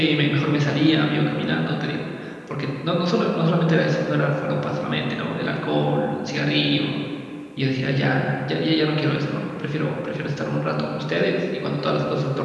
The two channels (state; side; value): identical; both; correlation 1.00